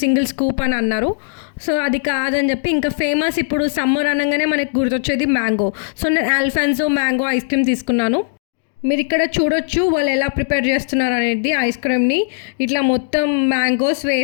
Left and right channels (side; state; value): right; silent; digital silence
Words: సింగిల్ స్కూప్ అని అన్నారు. సో అది కాదని చెప్పి ఇంకా ఫేమస్ ఇప్పుడు సమ్మర్ అనగానే మనకు గుర్తొచ్చేది మ్యాంగో. సో నేను ఆల్ఫాన్సో మ్యాంగో ఐస్ క్రీమ్ తీసుకున్నాను. మీరు ఇక్కడ చూడొచ్చు వాళ్ళు ఎలా ప్రిపేర్ చేస్తున్నారు అనేది. ఐస్ క్రీమ్ని ఇట్లా మొత్తం మ్యాంగోస్